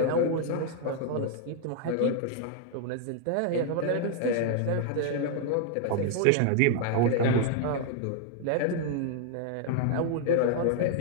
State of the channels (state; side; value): different; both; correlation 0.00